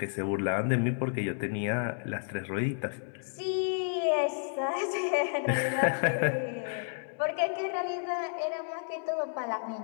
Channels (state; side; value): silent; right; digital silence